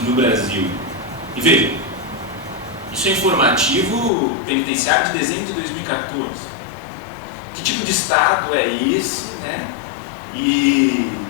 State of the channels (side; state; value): right; drops out; at 4.1 s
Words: no Brasil. E veja, isso é informativo penitenciário de dezembro de 2014. Que tipo de Estado é esse, né? E